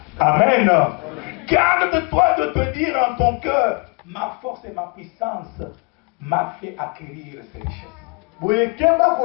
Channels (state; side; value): quieter; right; 31.3 dB